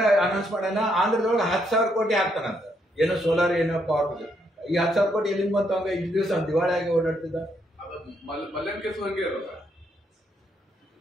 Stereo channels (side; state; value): both; normal; correlation 0.75